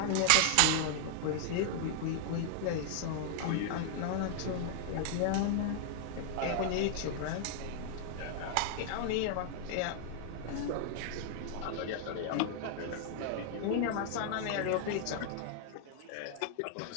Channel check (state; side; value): different; both; correlation 0.00